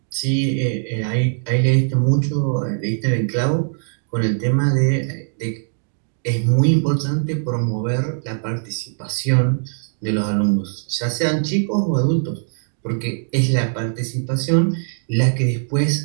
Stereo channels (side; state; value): left; silent; digital silence